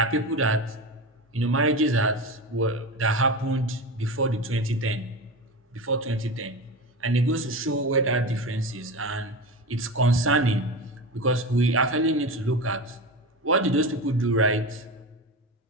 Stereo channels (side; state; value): both; normal; correlation 0.24